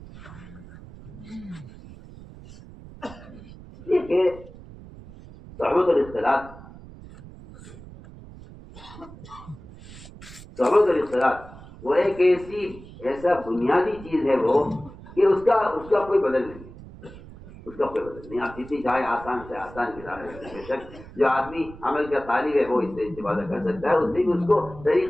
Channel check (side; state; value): right; noise; rumble, 17 dB below the sound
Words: یہ کہ صحبت اور اختلاط وہ ایک ایسا بنیادی چیز ہے وہ کہ اس کا کوئی بدل نہیں ہے، اس کا کوئی بدل نہیں. آپ جتنی چاہے آسان سے آسان کتاب ہے، بے شک جو آدمی عمل کا طالب ہے وہ اس سے استفادہ کر سکتا ہے، اس سے بھی اس کو